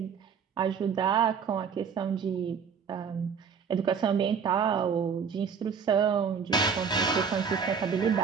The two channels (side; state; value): left; quieter; 6.5 dB